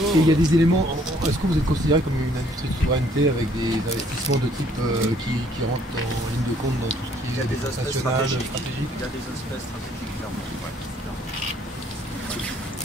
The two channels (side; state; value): both; normal; correlation 0.63